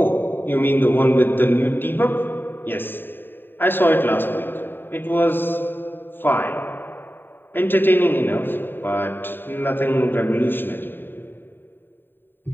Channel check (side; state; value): right; late; 0.095 ms